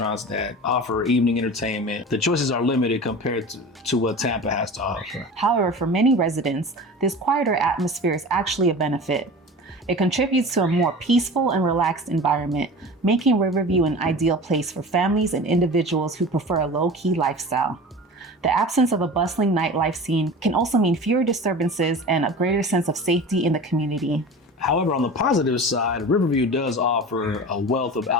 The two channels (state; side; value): normal; both; correlation 0.35